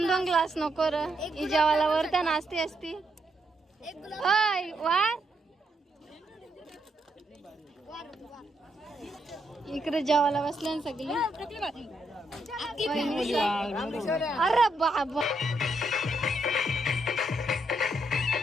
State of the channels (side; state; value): both; normal; correlation 0.78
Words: ग्लास नको र ही जेवायला वर त्या नाचती असती. होय वार इकडे जेवायला बसले ना सगळे. अरे बाबा